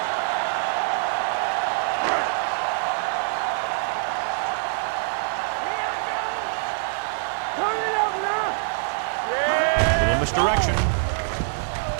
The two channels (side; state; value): left; silent; 60 dB below the other